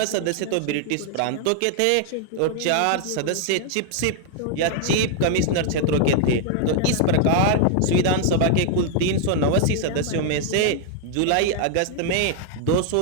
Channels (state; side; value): different; both; correlation 0.00